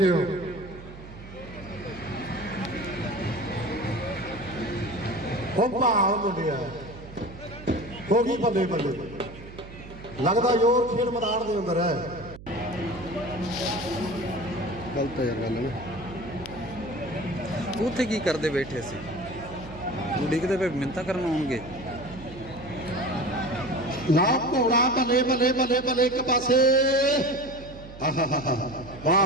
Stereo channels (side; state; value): right; noise; hum, 16 dB below the sound